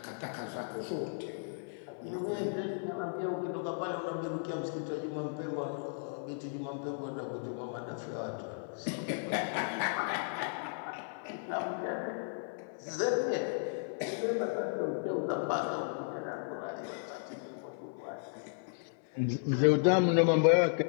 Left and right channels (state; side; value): silent; right; 55 dB below the other